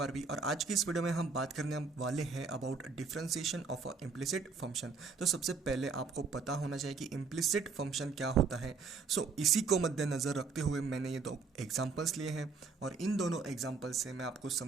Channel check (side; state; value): left; quieter; 4.9 dB